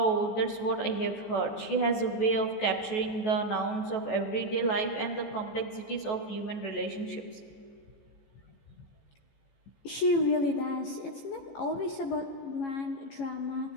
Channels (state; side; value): late; right; 15 ms